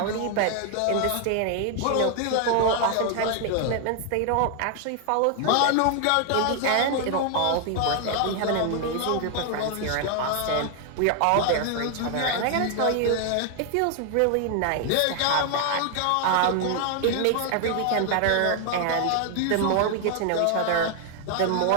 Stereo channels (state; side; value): different; both; correlation 0.00